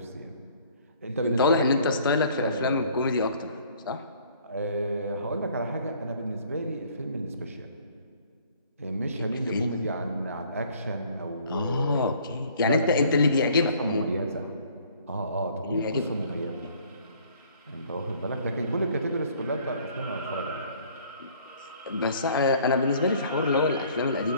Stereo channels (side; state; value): both; inverted; correlation -0.57